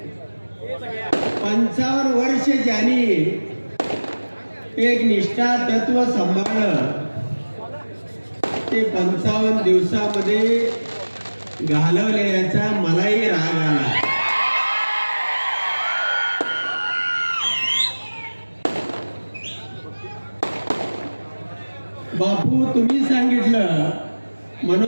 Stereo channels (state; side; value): inverted; both; correlation -1.00